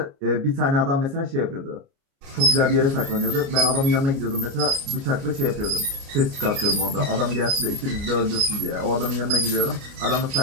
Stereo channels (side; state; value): left; late; 29 ms